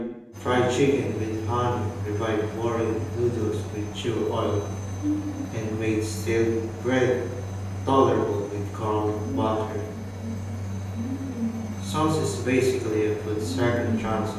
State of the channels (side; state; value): both; identical; correlation 1.00